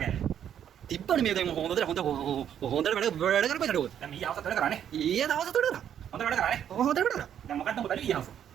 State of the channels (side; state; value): left; quieter; 9.5 dB